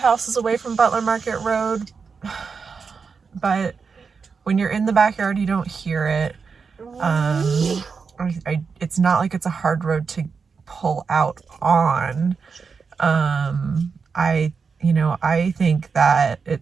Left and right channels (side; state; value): left; quieter; 5.4 dB